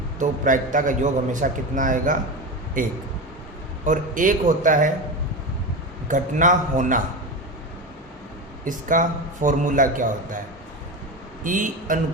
तो प्रायिकता का योग हमेशा कितना आएगा? एक। और एक होता है घटना होना। इसका फॉर्मूला क्या होता है? E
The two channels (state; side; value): normal; both; correlation 0.22